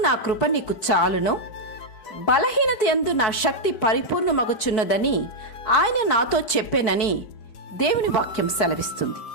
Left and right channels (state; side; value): late; right; 4.7 ms